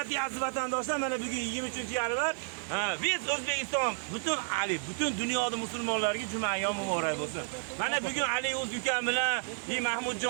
aziz vatandoshlar. Mana bugun 23-yanvar. Biz O'zbekiston butun dunyoda musulmonlarga juma ayyom muborak bo'lsin. Mana bugun Ali o'z ukam bilan,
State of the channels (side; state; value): left; silent; 57 dB below the other